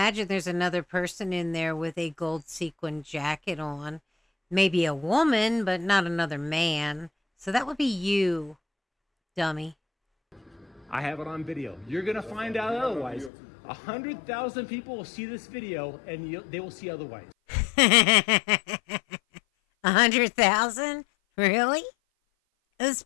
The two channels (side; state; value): right; drops out; at 13.3 s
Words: there's another person in there with a gold sequin jacket on. Maybe a woman, but not another man. So that would be you, dummy. I have it on video. You're gonna find out otherwise. 100,000 people will see this video, and they will see otherwise. 100,000? Really?